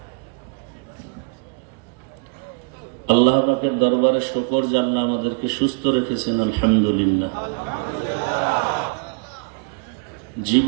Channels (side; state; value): left; quieter; 33.7 dB